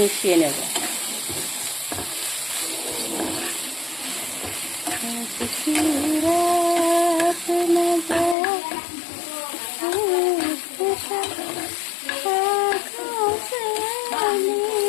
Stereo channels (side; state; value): right; drops out; at 8.3 s